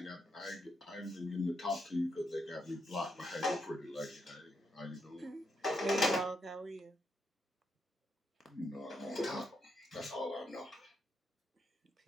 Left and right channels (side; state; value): both; normal; correlation 0.80